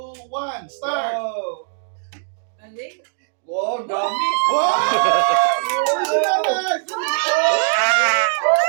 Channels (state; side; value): silent; left; digital silence